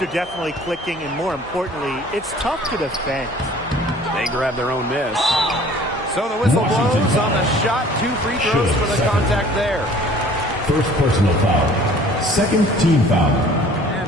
are definitely clicking, and more importantly, it's tough to defend. They grab their own miss. So the whistle blows on the shot. 2 free throws for the contact there. First personal foul. Second team foul.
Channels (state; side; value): normal; both; correlation 0.51